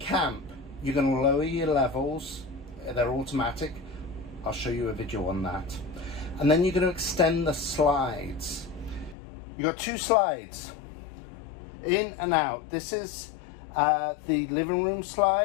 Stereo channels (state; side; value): drops out; right; at 9.2 s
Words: you're going to lower your levels. They're automatic. I'll show you a video on that. And then you're going to extend the slides. You've got two slides, in and out. This is the living room